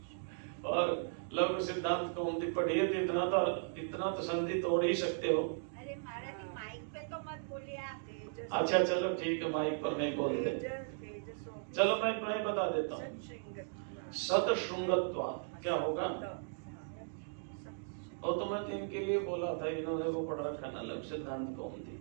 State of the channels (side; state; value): left; silent; digital silence